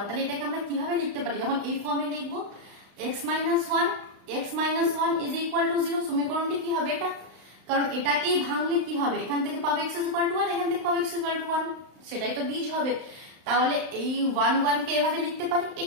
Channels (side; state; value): left; late; 35 ms